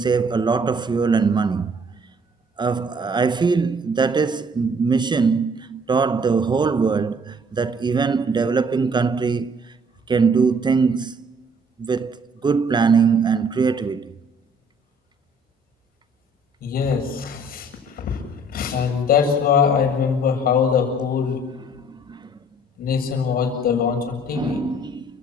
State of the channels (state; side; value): normal; both; correlation 0.59